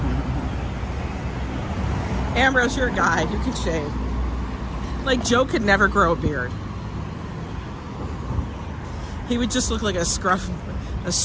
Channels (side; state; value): both; identical; correlation 1.00